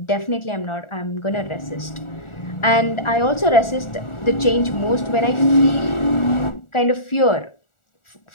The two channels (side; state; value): right; late; 1.4 ms